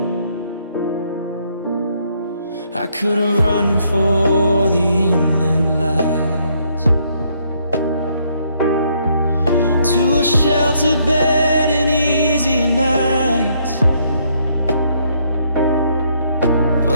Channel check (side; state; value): both; inverted; correlation -0.70